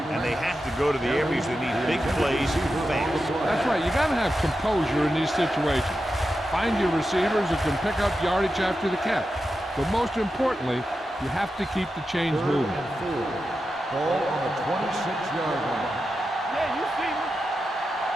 And they have to go to the areas that need big plays fast. That's right. You got to have composure in these situations. Find your receivers who can pick up yardage after the catch. But most importantly, you have to keep the chains moving. Ball on the 26-yard line. Yeah, you see me.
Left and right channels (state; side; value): normal; both; correlation 0.90